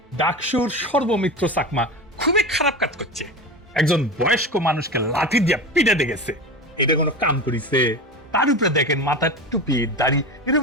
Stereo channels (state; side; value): normal; both; correlation 0.26